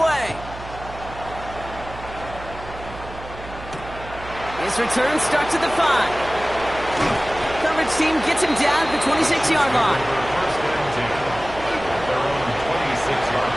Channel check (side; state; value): right; noise; hum, 14 dB below the sound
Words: His return starts at the 5. Coverage team gets him down at the 26-yard line. First and 10. Their own 26-yard